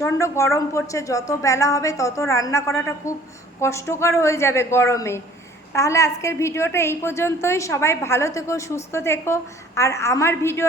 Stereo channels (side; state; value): both; normal; correlation 0.53